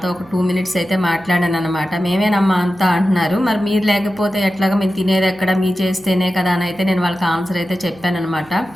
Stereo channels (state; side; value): noise; right; hum, 25 dB below the sound